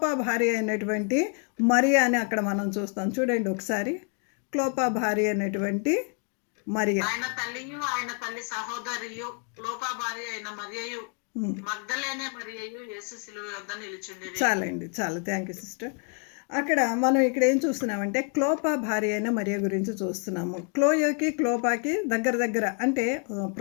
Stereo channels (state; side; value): quieter; right; 39.3 dB